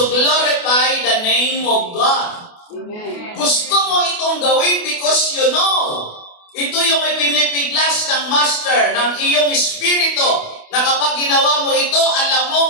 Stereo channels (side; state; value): right; late; 28 ms